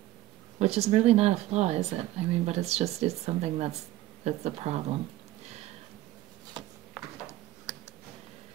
Which is really not a flaw, is it? I mean, but it's something that's a problem.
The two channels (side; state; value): left; quieter; 15.6 dB